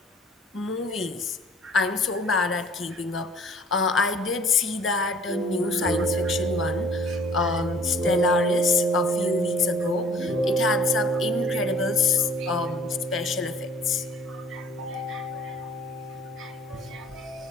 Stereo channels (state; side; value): normal; both; correlation 0.53